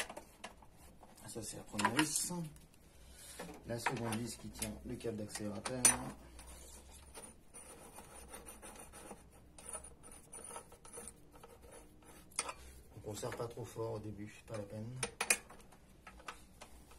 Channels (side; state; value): both; identical; correlation 1.00